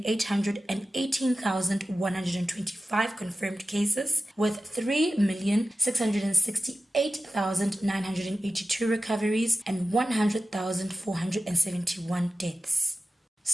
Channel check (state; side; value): normal; both; correlation 0.94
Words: confirmed cases, with 3,668,982 recoveries and 100,471 deaths.